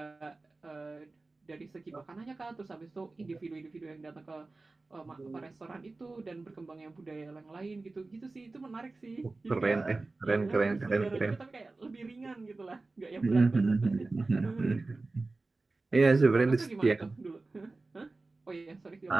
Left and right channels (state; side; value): quieter; left; 3.4 dB